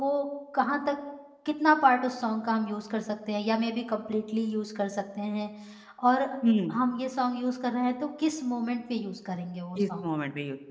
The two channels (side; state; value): both; identical; correlation 1.00